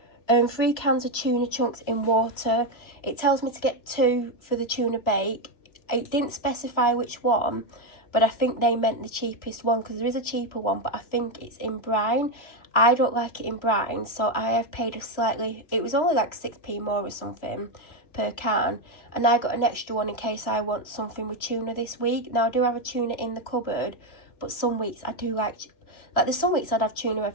3 cans of tuna chunks in water. It tells me to get 2 for the tuna bake. It didn't specify which one, but I think they meant the cheapest one because there is a cheaper one, but I think it's in brine. I don't like it in brine, so I have paid a slightly, it was only like 6p more or something per can, and I got an extra one in case I want something with tuna this week. Now I do have a tuna in the cupboard, but some weeks I do like there's some weeks I'd have tuna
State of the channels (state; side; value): late; right; 3.0 ms